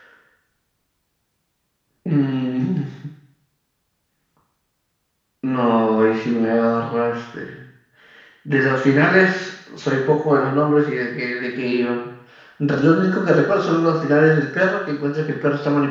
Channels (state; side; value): identical; both; correlation 1.00